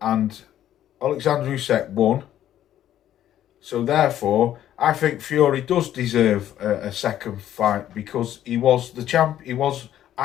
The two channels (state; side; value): quieter; right; 11.7 dB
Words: Alexander Usyk won. So therefore, I think Fury does deserve a second fight, because he was the champ. He was